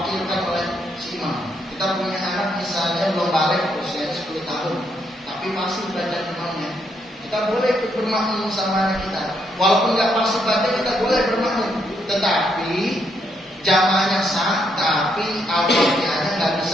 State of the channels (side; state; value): both; normal; correlation 0.75